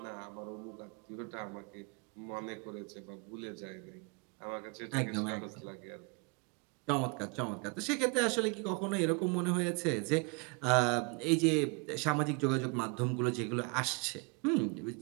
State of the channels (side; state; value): left; quieter; 32.1 dB